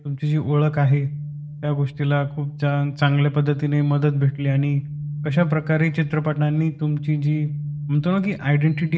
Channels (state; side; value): identical; both; correlation 1.00